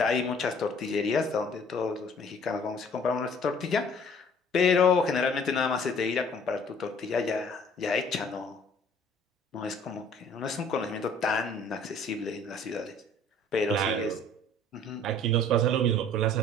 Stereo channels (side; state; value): both; normal; correlation 0.54